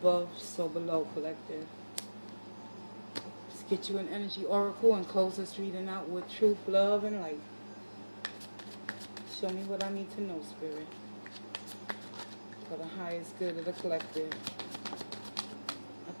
so below, collective. Let's get you an energy oracle and close this reading out with truth, love, and light. Show me what I need to know, Spirit, for the highest good of the collective. I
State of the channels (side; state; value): both; inverted; correlation -1.00